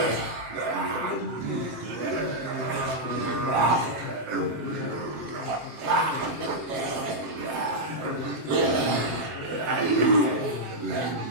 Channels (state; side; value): late; left; 7.5 ms